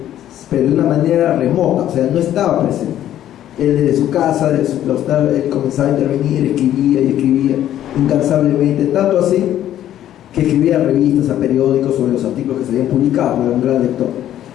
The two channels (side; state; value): right; quieter; 11.8 dB